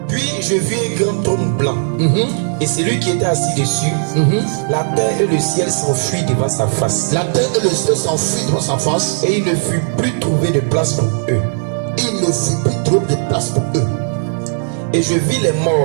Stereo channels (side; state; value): left; silent; 69 dB below the other